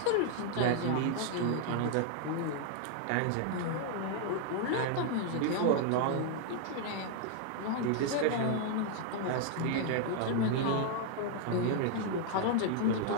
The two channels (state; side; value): different; both; correlation 0.00